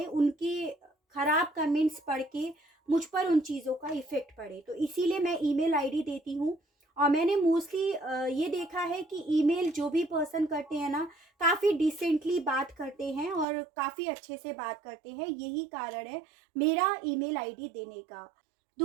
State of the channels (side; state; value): left; drops out; at 13.5 s